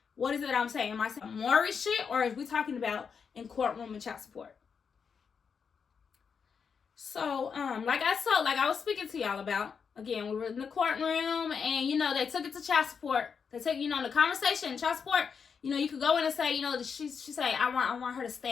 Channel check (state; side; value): quieter; right; 6.2 dB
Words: what is it I'm saying? Am I saying Maury shit, or is we talking about in courtroom and child support? So, like I was speaking to y'all about, again, we were in the courtroom, and they took it to child support. They take, the conversation, child support. You could go in and say, she say, I want her to